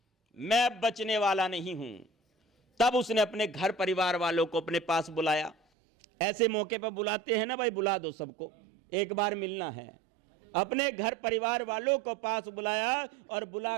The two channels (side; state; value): left; drops out; at 5.6 s